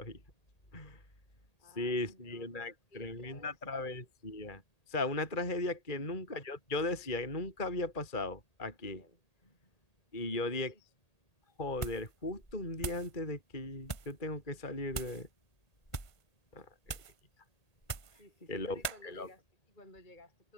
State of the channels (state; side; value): late; right; 1.8 ms